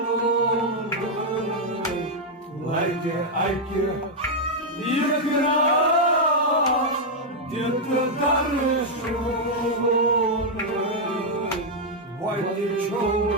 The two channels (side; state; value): both; normal; correlation -0.01